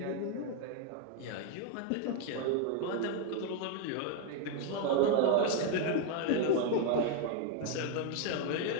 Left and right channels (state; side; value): different; both; correlation 0.01